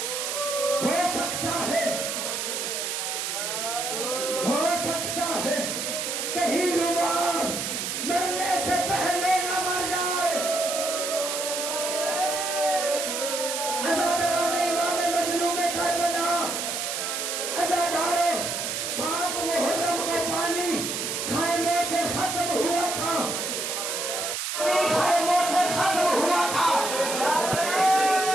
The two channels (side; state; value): right; noise; hiss, 2 dB below the sound